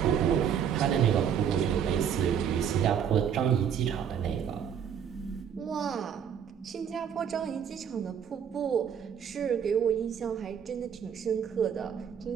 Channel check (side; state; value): left; quieter; 8.2 dB